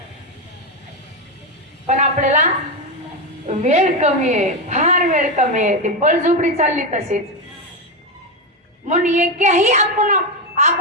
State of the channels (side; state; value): both; normal; correlation 0.10